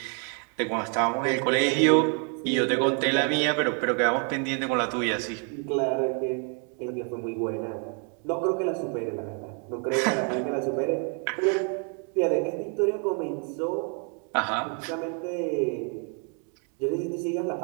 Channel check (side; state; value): left; quieter; 39.7 dB